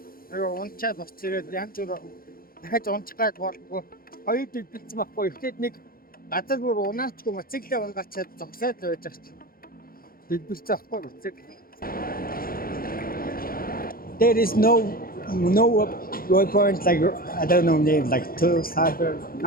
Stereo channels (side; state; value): right; late; 0.42 ms